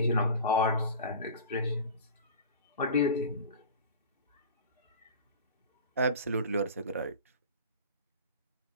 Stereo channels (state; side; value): inverted; both; correlation -0.35